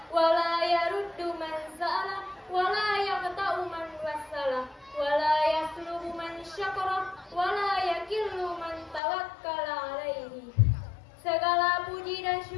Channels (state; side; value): drops out; right; at 9.0 s